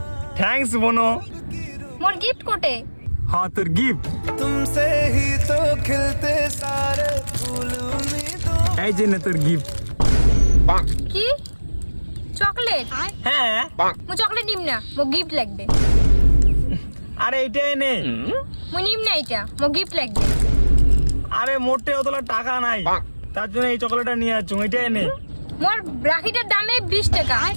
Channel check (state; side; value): inverted; both; correlation -1.00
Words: থ্যাঙ্কস বোনো। মোর গিফট কোটে? হ্যাঁ তোর গিফট तुमसे ही तो खिलते सारे फूल उम्मीदों। এই যে নে তোর গিফট। কি চকলেট? হ্যাঁ মু চকলেট নিম না, মো গিফট লাগবে। আরে এইটাই নে। মু নিম না এটা, মো গিফট লাগবে। আরে মোটে অতলা টাকা নাই, তার জন্য এই চকলেটটা নিয়ে যাচ্ছ। এইটাই নে। মোর রাখিটার দামে 20 টাকা,